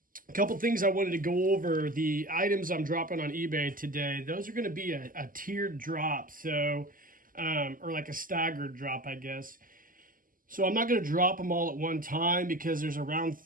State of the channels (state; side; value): late; left; 0.41 ms